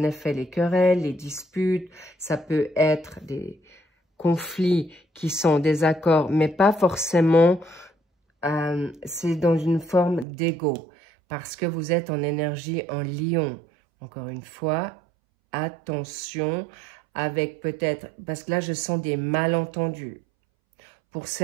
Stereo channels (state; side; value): drops out; left; at 10.2 s